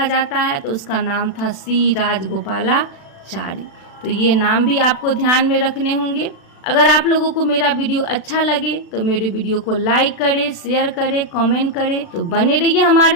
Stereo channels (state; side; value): late; right; 36 ms